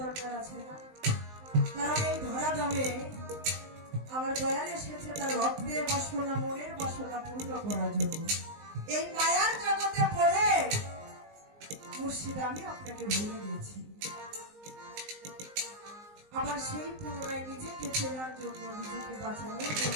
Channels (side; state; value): left; late; 19 ms